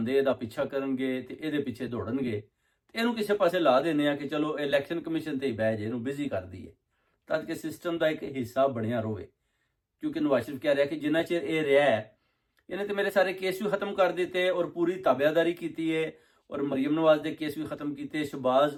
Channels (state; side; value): identical; both; correlation 1.00